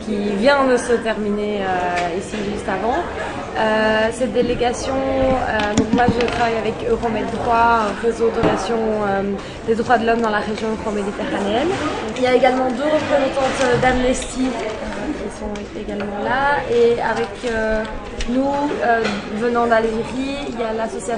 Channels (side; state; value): both; identical; correlation 1.00